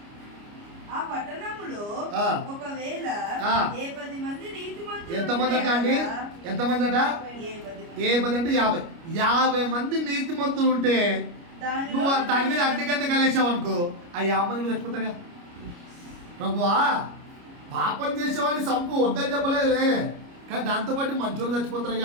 ఎంతమంది అట అండి? ఎంతమంది అట? 10 అంటే 50 మంది నీతిమంతులు ఉంటే నువ్వు దాని మీద అగ్నికంటే కలిసావు అనుకో, ఆ 50 మంది మీద చచ్చిపోతాడుగా. ప్రభువా, పాపం చేసేవాడిని సంపు వద్దని చెప్పలేదే, కానీ దాంతోపాటు మంచోళ్ళు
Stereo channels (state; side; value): late; left; 29 ms